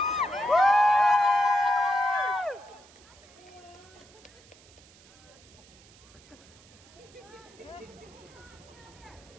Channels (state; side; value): noise; right; hiss, 25 dB below the sound